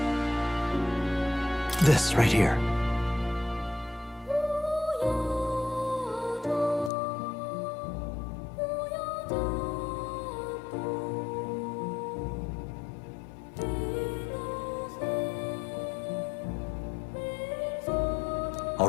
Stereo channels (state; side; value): drops out; right; at 6.9 s